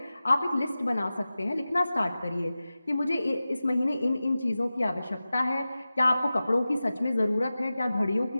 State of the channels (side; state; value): both; inverted; correlation -0.95